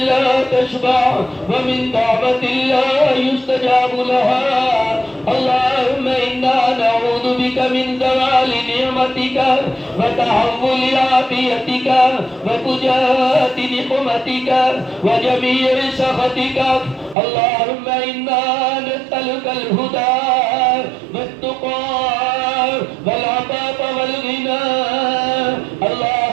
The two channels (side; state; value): left; drops out; at 17.2 s